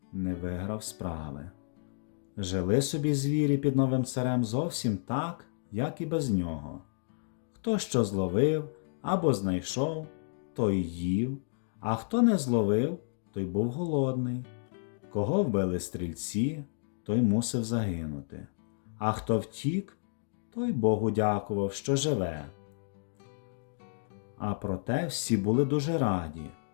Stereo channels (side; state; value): right; silent; digital silence